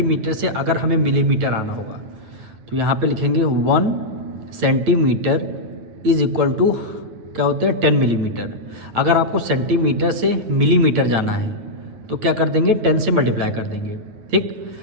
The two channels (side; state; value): left; late; 9.4 ms